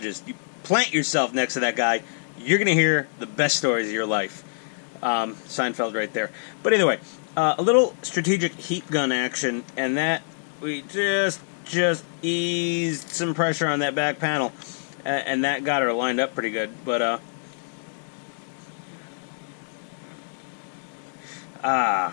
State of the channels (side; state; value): right; silent; 61 dB below the other